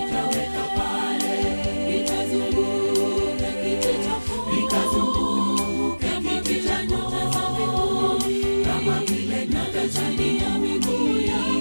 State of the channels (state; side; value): inverted; both; correlation -1.00